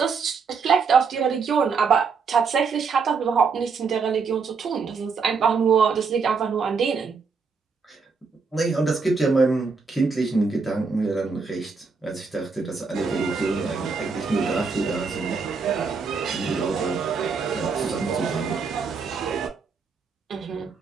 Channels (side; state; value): left; quieter; 5.0 dB